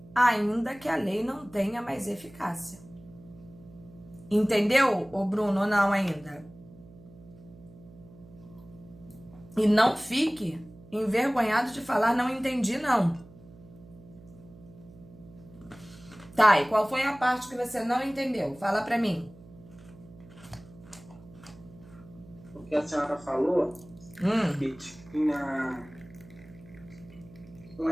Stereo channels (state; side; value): noise; right; hum, 21 dB below the sound